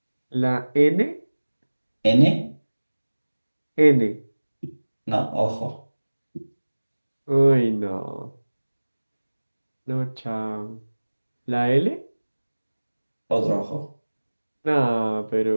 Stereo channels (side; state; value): both; inverted; correlation -1.00